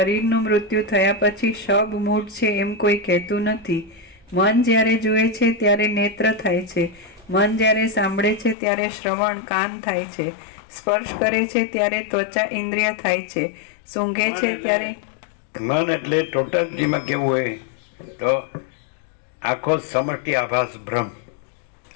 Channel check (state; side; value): drops out; right; at 8.6 s